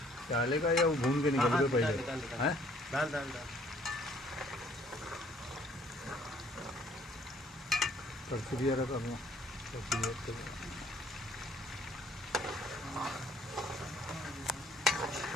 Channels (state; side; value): normal; both; correlation 0.60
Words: डालेगा या वो भून के निकल के पहले? हैं? डाल डाल डाल। परसिवियर करना, परसिवियर